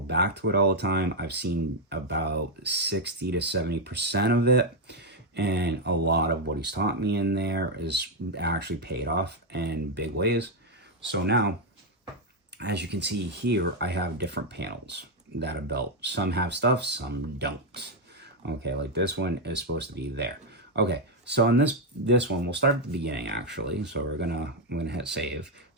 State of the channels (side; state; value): both; normal; correlation 0.02